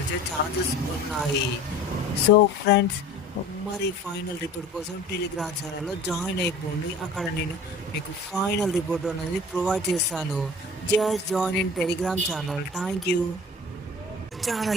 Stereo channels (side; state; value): both; normal; correlation 0.42